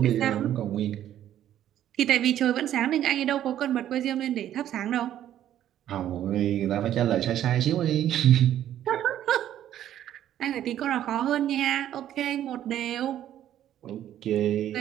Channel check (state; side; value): quieter; left; 11.5 dB